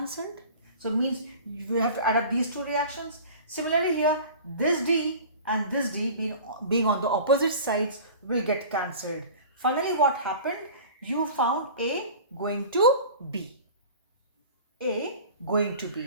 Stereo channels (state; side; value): inverted; both; correlation -0.40